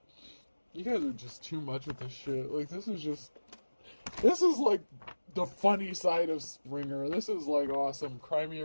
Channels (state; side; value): inverted; both; correlation -1.00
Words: You guys are just too much with this shit. Like, this is like the funny side of Springer. This is like awesome. Cry me